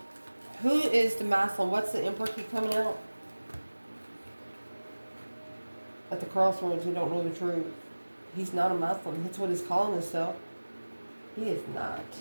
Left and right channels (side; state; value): both; inverted; correlation -1.00